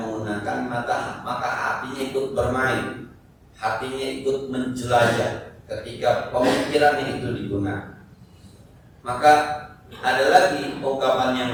menggunakan maka hatinya ikut bermain, hatinya ikut menjelajah. Ketika pemikirannya itu digunakan, maka ada lagi ungkapan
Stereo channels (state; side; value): identical; both; correlation 1.00